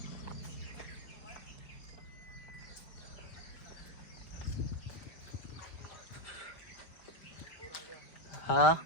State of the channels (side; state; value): right; late; 4.8 ms